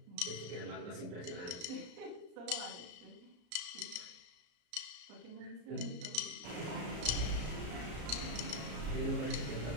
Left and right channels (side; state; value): left; late; 34 ms